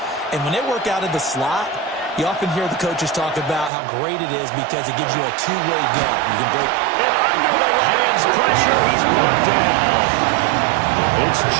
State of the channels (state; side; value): drops out; left; at 3.7 s